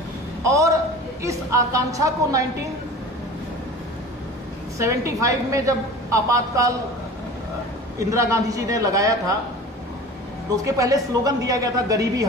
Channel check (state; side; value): normal; both; correlation 0.39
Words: और इस आकांक्षा को 1975 में जब आपातकाल इंदिरा गांधी जी ने लगाया था तो उसके पहले स्लोगन दिया गया था गरीबी